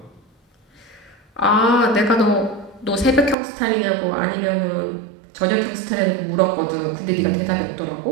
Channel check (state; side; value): drops out; left; at 3.4 s